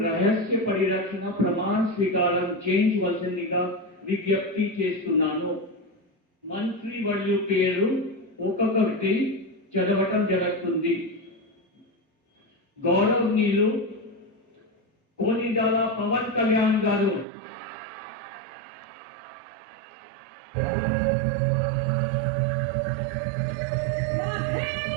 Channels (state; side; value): drops out; left; at 17.2 s